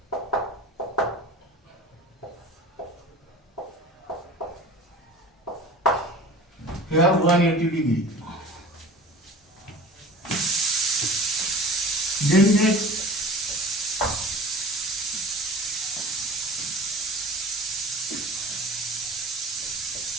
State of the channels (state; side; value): normal; both; correlation 0.41